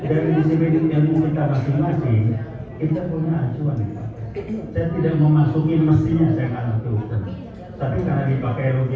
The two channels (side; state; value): both; identical; correlation 1.00